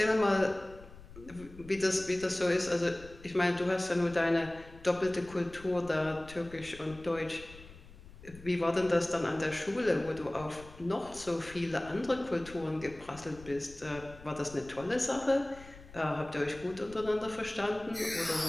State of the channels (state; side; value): noise; left; rumble, 18 dB below the sound